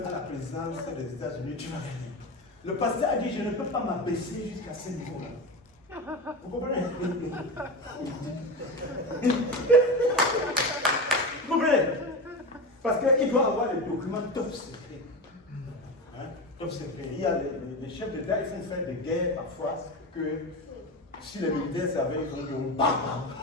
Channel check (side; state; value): both; normal; correlation 0.23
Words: à la présidence des États-Unis, tu vas gagner. Le pasteur a dit, je ne peux pas m'abaisser jusqu'à ce niveau-là. Vous comprenez? Vous comprenez? Parce qu'il doit avoir les documents top secret. Hein? Top secret. Il y a les chefs d'État, ils font faire des guerres parfois que si les militaires savaient, ils vont dire bam.